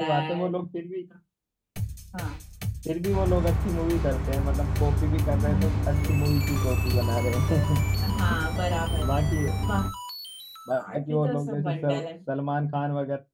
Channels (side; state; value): both; identical; correlation 1.00